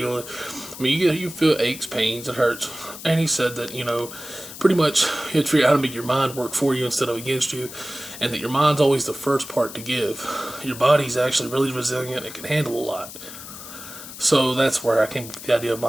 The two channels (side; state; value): left; noise; hiss, 13 dB below the sound